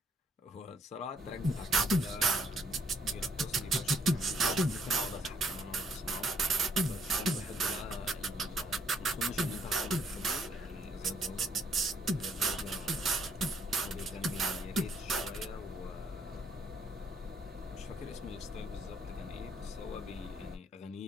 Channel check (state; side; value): normal; both; correlation 0.67